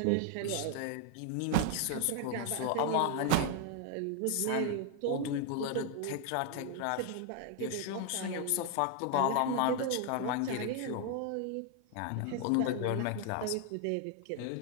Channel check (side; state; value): both; different; correlation 0.00